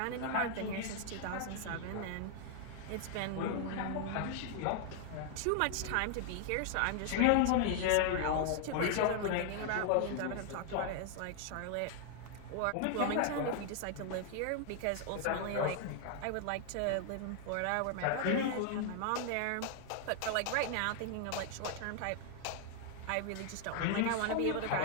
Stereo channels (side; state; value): both; different; correlation 0.00